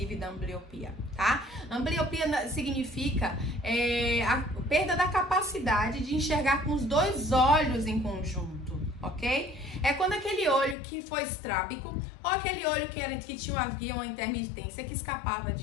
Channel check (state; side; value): drops out; right; at 10.8 s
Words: da ambliopia, tá? Ambliopia significa a perda da capacidade de enxergar com os dois olhos em conjunto, ok? É quando aquele olho que foi estrábico ou aquele olho que havia uma intermitência que escapava